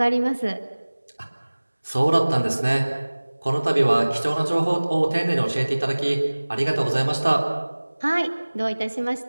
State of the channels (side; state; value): both; inverted; correlation -1.00